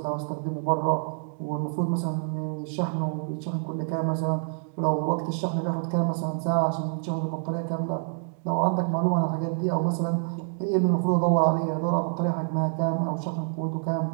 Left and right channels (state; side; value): silent; left; digital silence